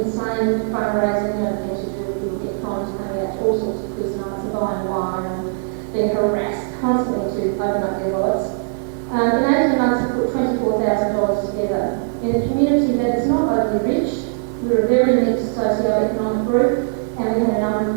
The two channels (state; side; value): silent; left; digital silence